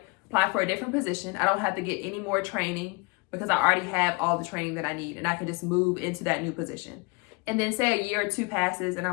Apply for a different position. I don't have to get any more training because I already have all the training that I need, and I can just move into that new position. And then say a year or two passes and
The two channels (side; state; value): right; quieter; 29.2 dB